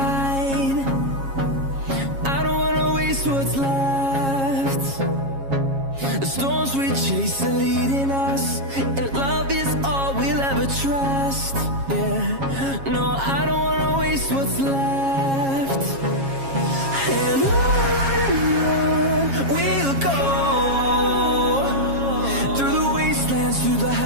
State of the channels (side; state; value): left; late; 7.3 ms